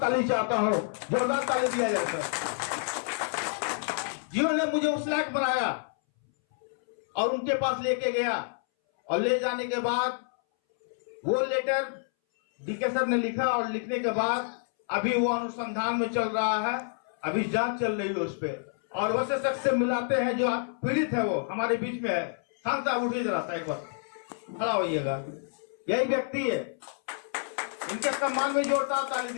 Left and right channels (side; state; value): right; silent; 59 dB below the other